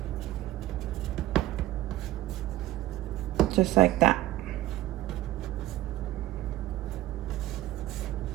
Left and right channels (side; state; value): left; quieter; 15.6 dB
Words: Just like that.